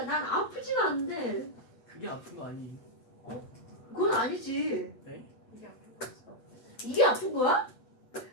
난 아프지가 않는데 그게 아픈 거 아니에요? 그건 아니지. 네? 이게 앞에 있어. 이게 아픈 거야?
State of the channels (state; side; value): late; right; 8.0 ms